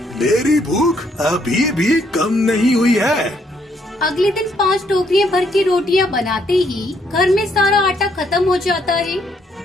मेरी भूख अभी भी कम नहीं हुई है। अगले दिन 5 टोकरियां भर के रोटियां बनाते ही घर में सारा आटा खत्म हो जाता है।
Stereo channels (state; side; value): normal; both; correlation 0.71